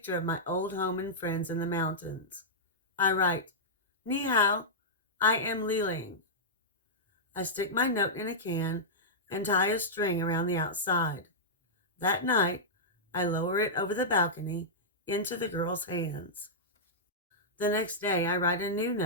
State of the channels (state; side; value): normal; both; correlation -0.12